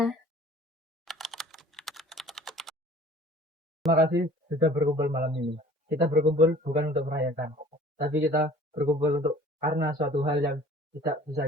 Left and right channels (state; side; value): normal; both; correlation 0.49